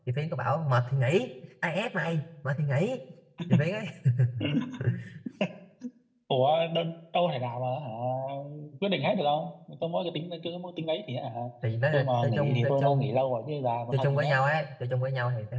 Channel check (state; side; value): identical; both; correlation 1.00